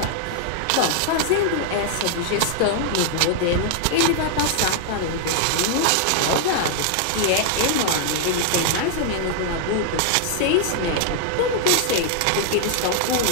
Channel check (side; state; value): both; different; correlation -0.01